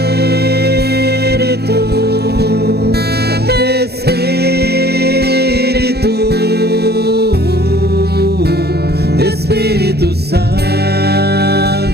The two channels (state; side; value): late; left; 0.47 ms